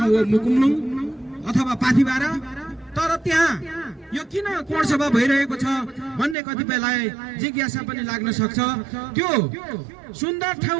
हो मुकुमलुङ अथवा पाथिबारा। तर त्यहाँ यो किन कोणसभा भइरहेको छ भन्ने कतिपयलाई जिज्ञासा पनि लाग्न सक्छ। त्यो सुन्दर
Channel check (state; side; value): drops out; left; at 6.4 s